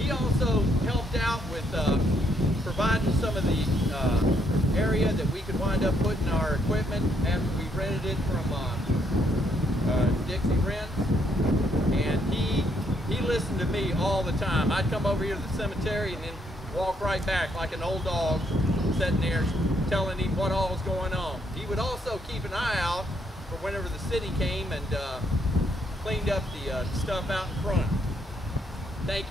also helped out with providing some of the area that we could wind up putting our equipment after we rented it from Dixie Rents. And he listened to me all the time. I'd come over here to the cemetery and then walk right back like an old dog, sitting there telling him what all was going on. He would also keep an eye out for whenever the city came and cleaned up the stuff out in front. Thank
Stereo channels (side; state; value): both; normal; correlation 0.73